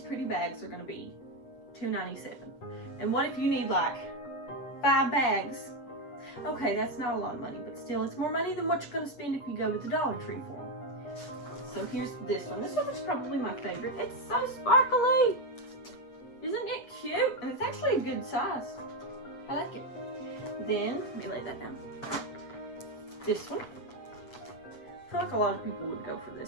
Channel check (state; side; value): late; right; 8.1 ms